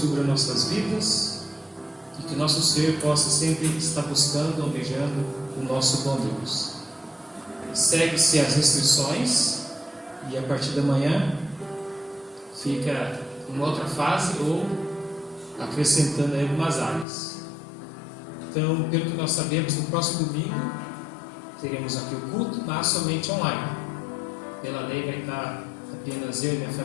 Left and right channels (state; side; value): drops out; right; at 17.1 s